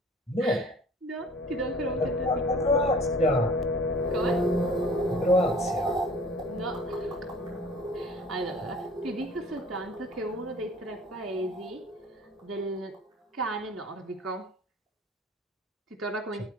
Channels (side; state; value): both; normal; correlation 0.47